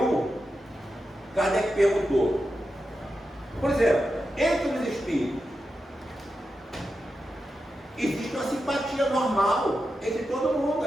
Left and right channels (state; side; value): normal; both; correlation 0.89